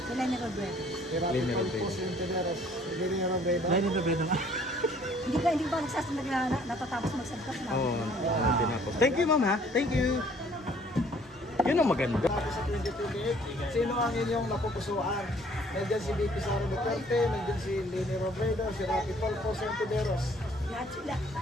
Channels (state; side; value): normal; both; correlation 0.58